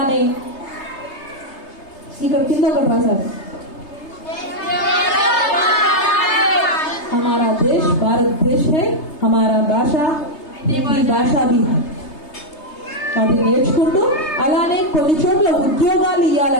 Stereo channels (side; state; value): right; late; 3.3 ms